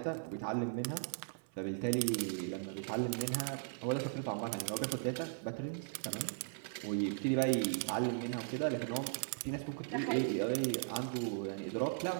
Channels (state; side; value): silent; left; 53 dB below the other